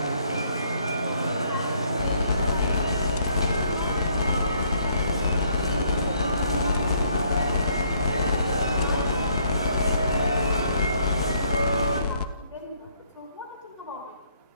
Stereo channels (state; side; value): inverted; both; correlation -0.67